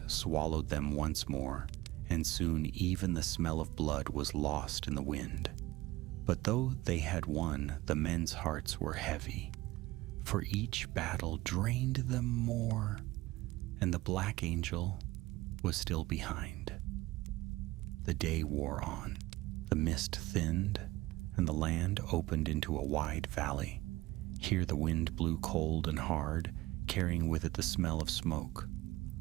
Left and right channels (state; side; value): quieter; left; 18.7 dB